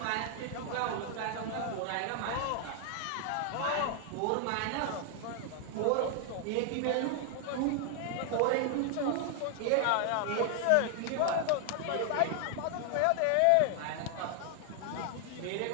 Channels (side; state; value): both; different; correlation 0.00